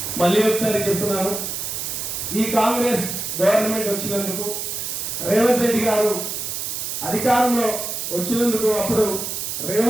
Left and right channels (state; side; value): noise; right; hiss, 4 dB below the sound